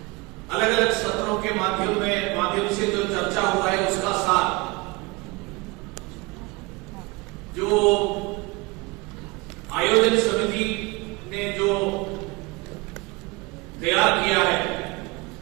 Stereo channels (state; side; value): quieter; left; 25.4 dB